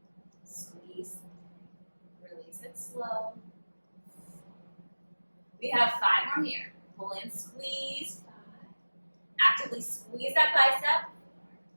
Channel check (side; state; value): both; inverted; correlation -1.00